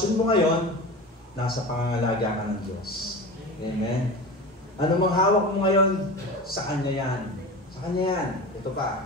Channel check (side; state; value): both; normal; correlation 0.30